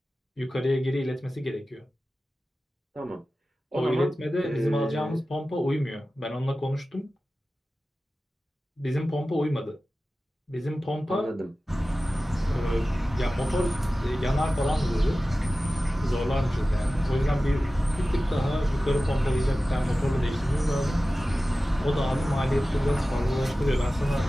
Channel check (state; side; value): normal; both; correlation 0.95